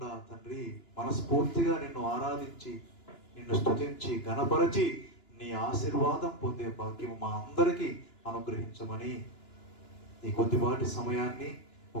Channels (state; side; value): late; right; 2.9 ms